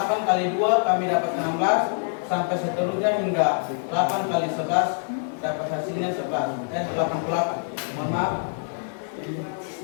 kali 2 kami dapat 16 sampai seterusnya hingga 8 kali 11 dapat hasilnya 88. Mohon maaf.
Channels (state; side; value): silent; right; digital silence